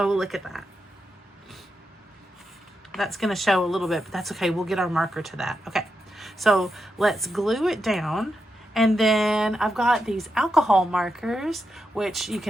look at that. That's going to show a little bit, but that's okay. We'll get our marker to that. Okay. So let's glue it down. And then I've got these alcohol markers, which you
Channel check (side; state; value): both; normal; correlation 0.86